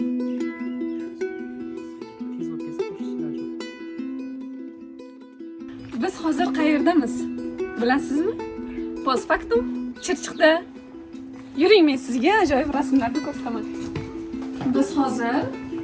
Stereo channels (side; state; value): both; identical; correlation 1.00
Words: Biz hozir qayerdamiz? Bilasizmi? Postfaktum Chirchiqda. Yuring, men sizga ajoyib rasmlarni ko'rsataman. Biz hozir